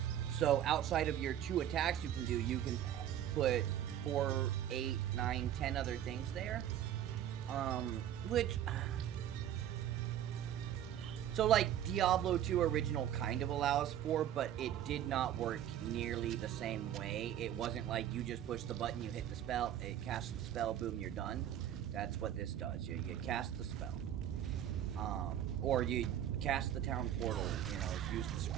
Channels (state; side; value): quieter; left; 10.9 dB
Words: So outside of your 2 attacks you can put 4, 8, 9, 10 other things there. Which... So, like, Diablo 2 original kind of allows for, but it did not work nearly the same way. It wasn't like you just push the button, you hit the spell, it casts the spell, boom, you're done. That's what this does. You cast the spell. Or you cast the town portal, you know, use the